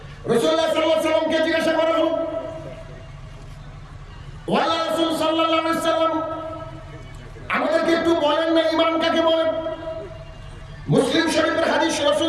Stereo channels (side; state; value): both; identical; correlation 1.00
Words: রাসূলুল্লাহ সাল্লাল্লাহু আলাইহি ওয়াসাল্লামকে জিজ্ঞাসা করা হলো, ওয়া রাসূল সাল্লাল্লাহু আলাইহি ওয়াসাল্লাম আমাদেরকে একটু বলেন না ঈমান কাকে বলে? মুসলিম শরীফের হাদিস,